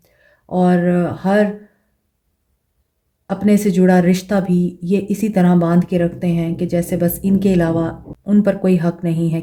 और हर अपने से जुड़ा रिश्ता भी ये इसी तरह बांध के रखते हैं कि जैसे बस इनके अलावा उन पर कोई हक नहीं है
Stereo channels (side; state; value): both; identical; correlation 1.00